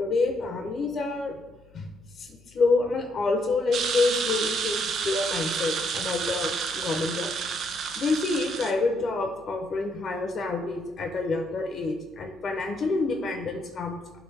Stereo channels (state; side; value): noise; left; hum, 27 dB below the sound